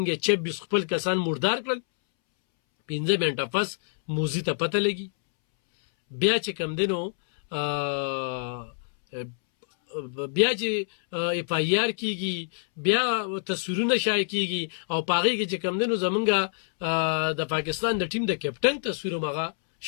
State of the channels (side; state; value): right; silent; 61 dB below the other